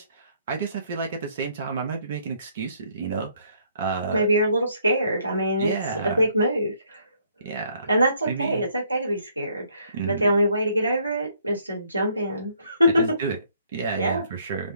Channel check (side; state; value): both; inverted; correlation -0.67